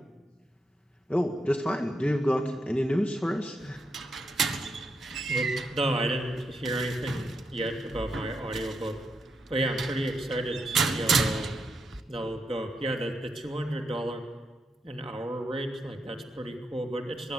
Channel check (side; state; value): both; normal; correlation 0.82